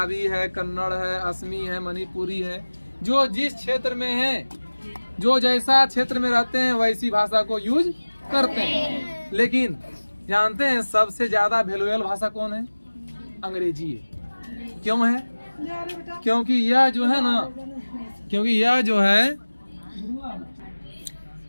है, कन्नड़ है, असमी है, मणिपुरी है। जो जिस क्षेत्र में है, जो जैसा क्षेत्र में रहते हैं वैसी भाषा को यूज करते हैं। लेकिन जानते हैं सबसे ज्यादा वैल्यूएबल भाषा कौन है? अंग्रेजी है। क्यों है? क्योंकि यह जो है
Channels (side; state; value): both; inverted; correlation -1.00